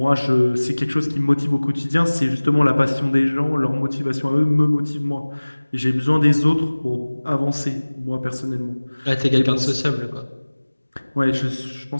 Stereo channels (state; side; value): inverted; both; correlation -1.00